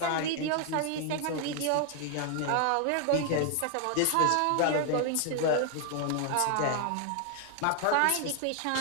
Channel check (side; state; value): both; different; correlation 0.00